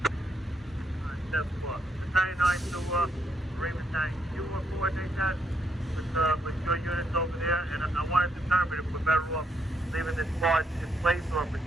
Battalion 9 to Marine Battalion. You will coordinate that with your units over there, and I want to determine if we're better off leaving this barge in place or if it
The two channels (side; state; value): both; normal; correlation 0.75